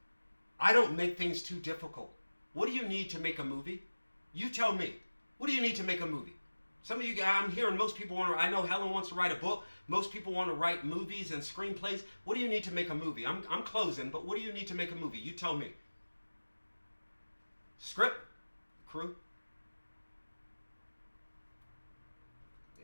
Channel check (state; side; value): inverted; both; correlation -1.00